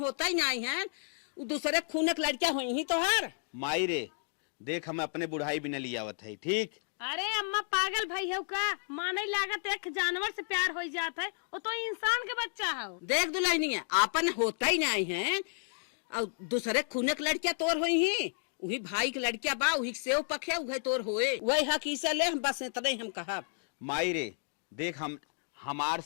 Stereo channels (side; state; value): right; silent; 56 dB below the other